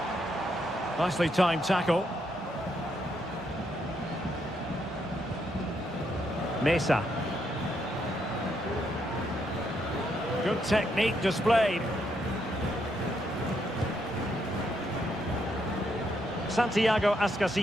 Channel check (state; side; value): normal; both; correlation 0.77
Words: Nicely timed tackle. Mesa. Good technique displayed. Santiago